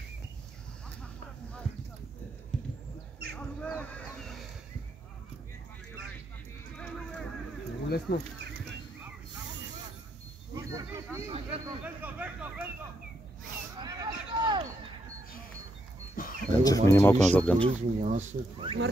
Много лесно. Янчев мини малко назад, Ганчев.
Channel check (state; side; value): normal; both; correlation 0.79